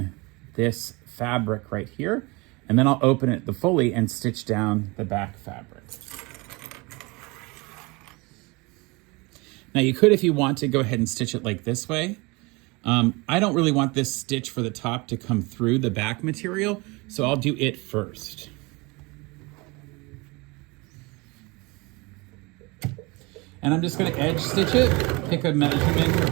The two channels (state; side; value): quieter; left; 25.9 dB